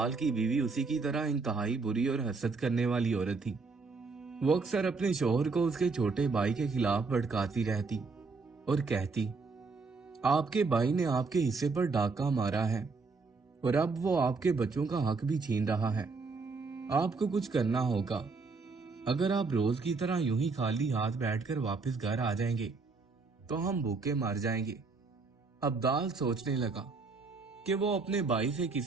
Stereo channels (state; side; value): quieter; left; 4.2 dB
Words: की बीवी उसी की तरह इंतहाई बुरी और हसद करने वाली औरत थी। वो अक्सर अपने शौहर को उसके छोटे भाई के खिलाफ भड़काती रहती और कहती, आपके भाई ने आपके हिस्से पर डाका मारा है और अब वो आपके बच्चों का हक भी छीन रहा है। आपको कुछ करना होगा। अगर आप रोज की तरह यूं ही खाली हाथ बैठकर वापस घर आ जाएंगे तो हम भूखे मर जाएंगे। अब्दाल सोचने लगा कि वो अपने भाई से